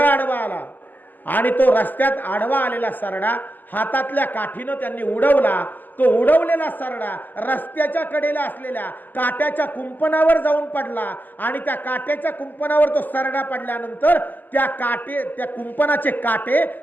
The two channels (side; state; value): right; late; 0.086 ms